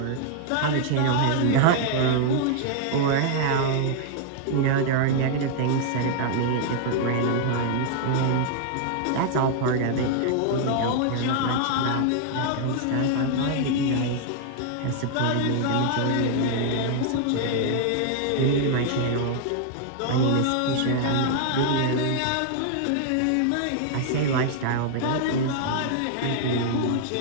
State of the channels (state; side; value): different; both; correlation -0.01